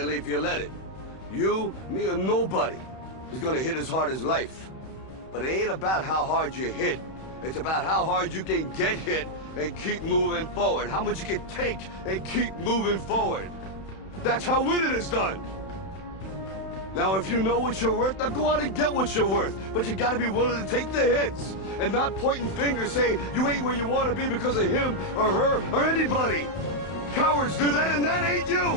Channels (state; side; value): late; right; 31 ms